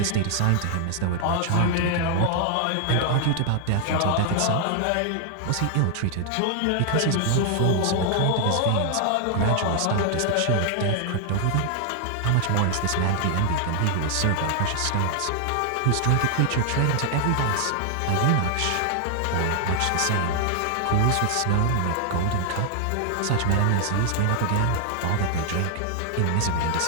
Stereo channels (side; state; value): both; different; correlation 0.00